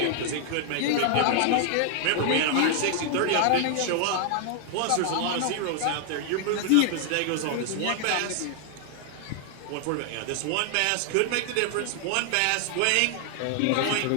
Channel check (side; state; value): both; different; correlation 0.00